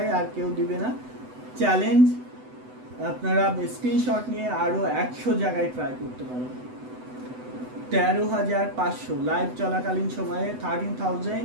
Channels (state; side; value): late; left; 8.0 ms